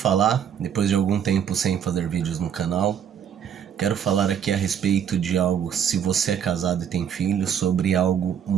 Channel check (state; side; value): quieter; left; 8.5 dB